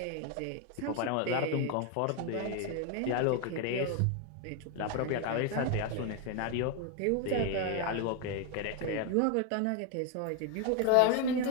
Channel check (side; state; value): both; different; correlation 0.01